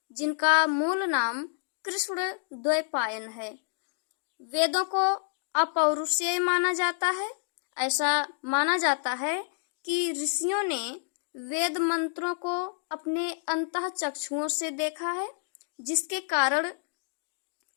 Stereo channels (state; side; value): silent; right; digital silence